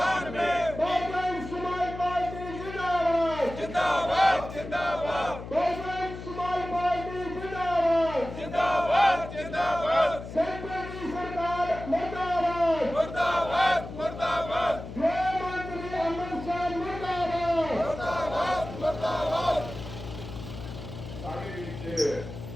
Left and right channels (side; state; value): left; noise; hum, 11 dB below the sound